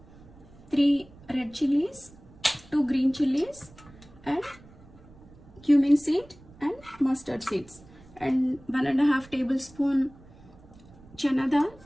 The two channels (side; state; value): right; noise; rumble, 23 dB below the sound